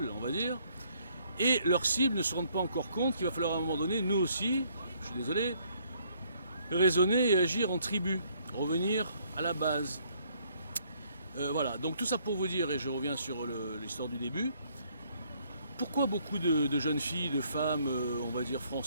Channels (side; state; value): both; inverted; correlation -0.66